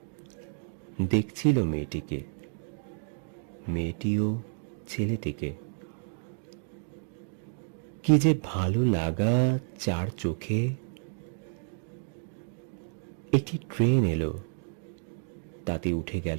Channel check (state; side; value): silent; left; 57 dB below the other